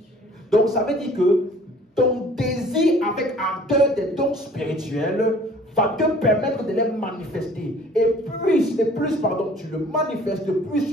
Donc ça veut dire que ton désir avec ardeur des dons spirituels va te permettre de les manifester. Et plus tu le manifestes, plus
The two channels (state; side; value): normal; both; correlation 0.52